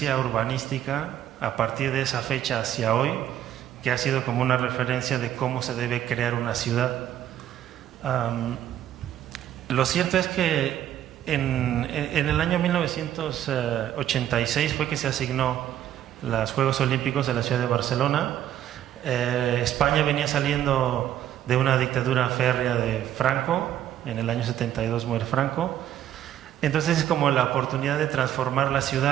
urbanística a partir de esa fecha hacia hoy, que ha sido como una referencia de cómo se debe crear una ciudad. Lo cierto es que en el año 1986 fue que se asignó los Juegos Olímpicos de la ciudad de Barcelona. España venía saliendo de una dictadura férrea de Franco, en el año 72 muere Franco. Entonces es como la oportunidad de transformar la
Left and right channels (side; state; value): left; quieter; 11.4 dB